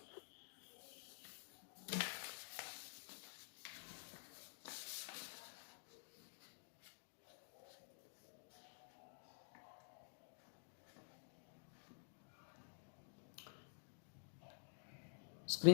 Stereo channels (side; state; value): right; silent; digital silence